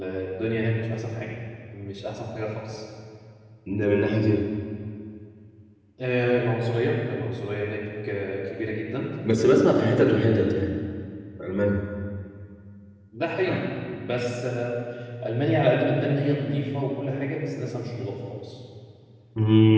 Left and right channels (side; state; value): both; identical; correlation 1.00